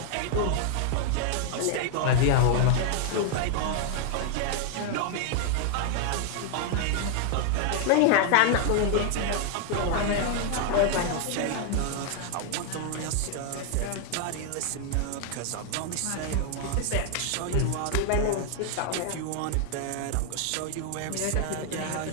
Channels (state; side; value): different; both; correlation 0.00